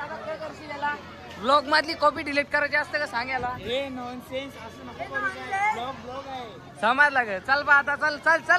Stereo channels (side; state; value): both; identical; correlation 1.00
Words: आता काय करशील याला. ब्लॉग मधली कॉपी डिलीट करायची असते का सांगायला. समजला ग. चल बा आता